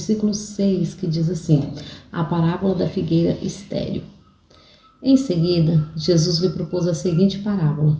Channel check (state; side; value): identical; both; correlation 1.00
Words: 6, que diz assim: a parábola da figueira estéril. Em seguida, Jesus lhe propôs a seguinte parábola: